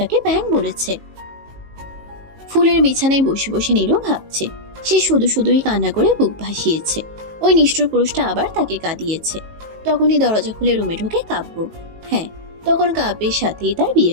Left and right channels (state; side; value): late; left; 19 ms